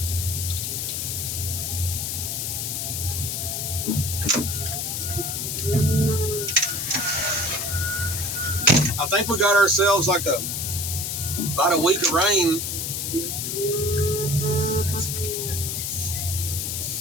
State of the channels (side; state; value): left; noise; hiss, 2 dB below the sound